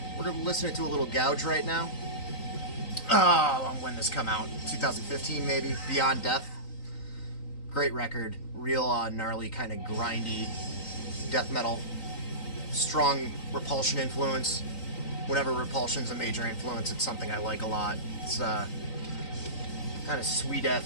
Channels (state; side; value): late; right; 3.9 ms